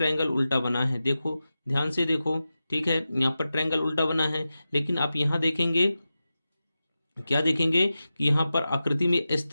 उल्टा बना है। देखो ध्यान से देखो, ठीक है, यहाँ पर ट्रायंगल उल्टा बना है, लेकिन आप यहाँ देखेंगे क्या देखेंगे कि यहाँ पर आकृति में इस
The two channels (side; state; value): both; inverted; correlation -0.93